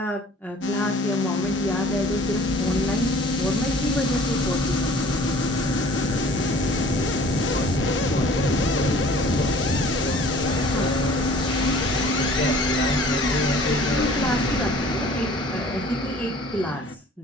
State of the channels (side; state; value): both; normal; correlation 0.50